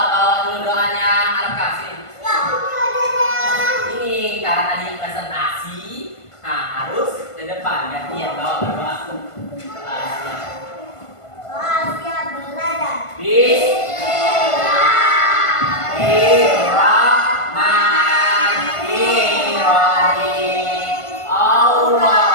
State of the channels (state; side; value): late; right; 1.5 ms